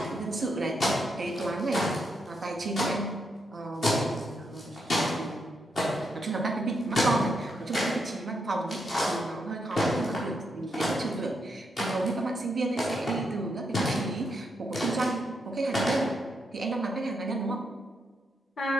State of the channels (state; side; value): normal; both; correlation 0.80